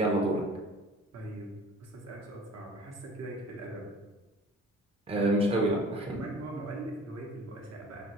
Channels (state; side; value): normal; both; correlation 0.46